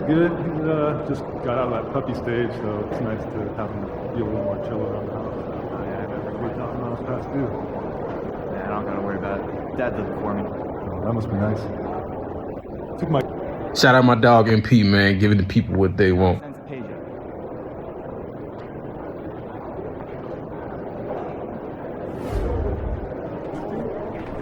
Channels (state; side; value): identical; both; correlation 1.00